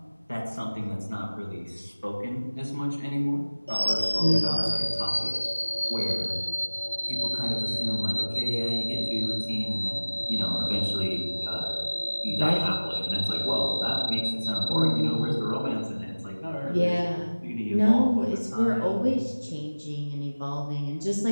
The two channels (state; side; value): inverted; both; correlation -1.00